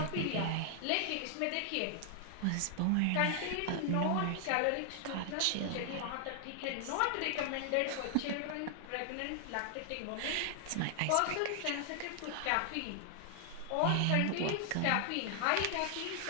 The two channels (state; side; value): different; both; correlation 0.00